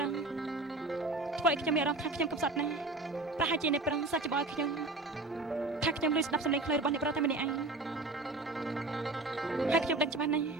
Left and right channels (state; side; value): quieter; left; 3.0 dB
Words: រុសធ្វើឲ្យខ្ញុំមានអារម្មណ៍ថាខ្ញុំកំសត់ណាស់ប្រហែលជាអ្នកប្រុសសាច់ច្បល់ខ្ញុំថាខ្ញុំលឺស្ដាប់សំឡេងខ្លាចរបស់អ្នកប្រុសតែម្នាក់ឯងហើយខ្ញុំដឹងច្បាស់ណាស់